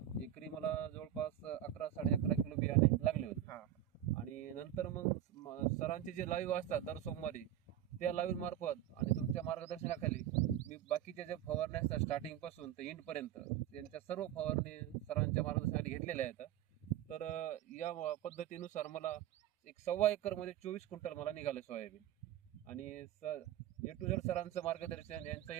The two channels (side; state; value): left; quieter; 11.6 dB